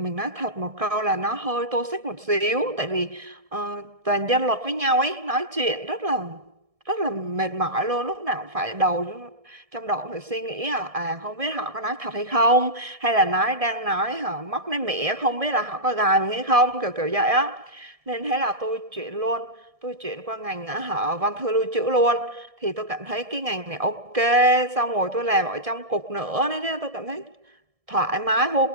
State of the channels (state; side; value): late; left; 1.7 ms